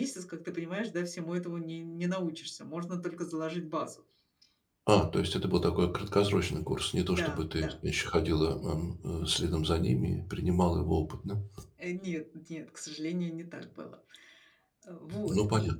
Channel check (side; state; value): both; identical; correlation 1.00